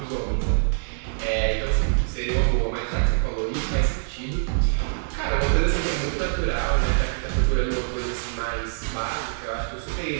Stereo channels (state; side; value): silent; left; 55 dB below the other